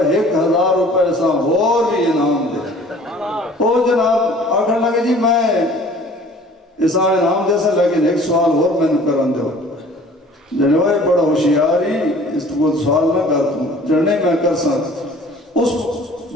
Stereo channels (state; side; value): normal; both; correlation 0.50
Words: 1000 روپے سا اور بھی انعام دے. او جناب آکھن لگا جی میں اسا انعام دے سا لیکن ایک سوال اور میں نے کرن دو. جنوائے بڑا ہوشیاری اس کو سوال نہ کر تم جننے میں کر سا. اس